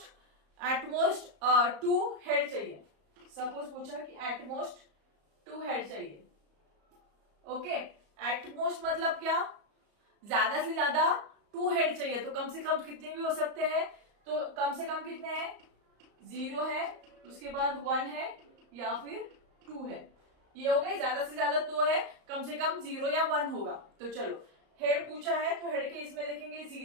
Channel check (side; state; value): left; late; 34 ms